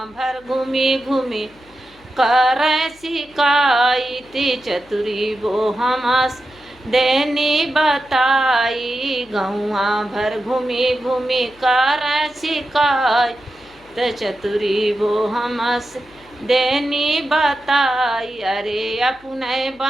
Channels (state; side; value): noise; left; hum, 28 dB below the sound